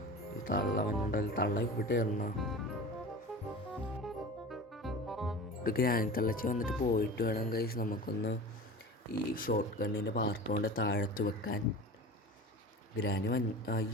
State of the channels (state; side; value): normal; both; correlation 0.35